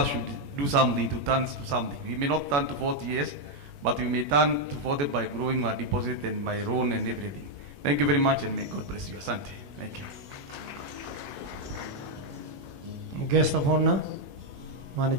should do something to turn to something. We may not turn to 40 years, but we may turn to 40 by growing our deposit and my loan and everything. Thank you very much, and may God bless you. Asante. Thank you. Guest of honor,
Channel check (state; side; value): late; left; 21 ms